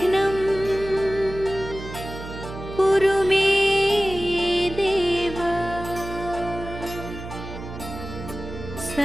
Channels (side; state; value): right; noise; hum, 11 dB below the sound